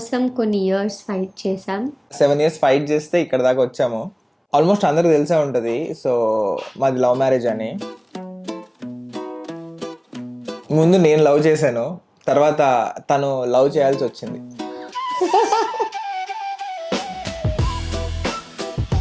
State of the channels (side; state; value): both; identical; correlation 1.00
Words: కొన్ని ఇయర్స్ ఫైట్ చేసాం. 7 years ఫైట్ చేస్తే ఇక్కడ దాకా వచ్చాము. ఆల్మోస్ట్ అందరికి తెలిసే ఉంటుంది. సో మాది లవ్ మ్యారేజ్ అని. ముందు నేను లవ్ చేశాను, తర్వాత తను లవ్ చేయాల్సి వచ్చింది.